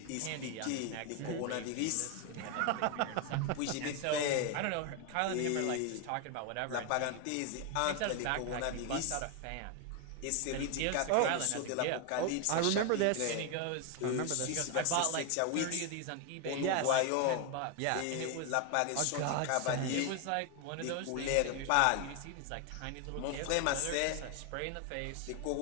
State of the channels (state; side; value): different; both; correlation 0.01